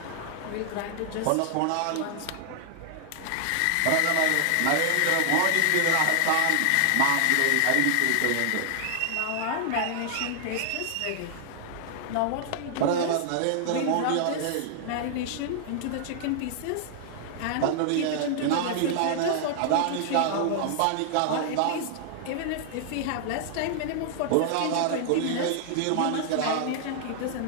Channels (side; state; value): both; different; correlation -0.01